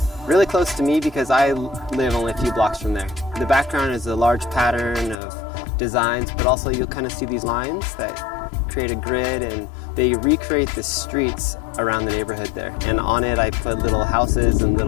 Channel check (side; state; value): right; drops out; at 5.2 s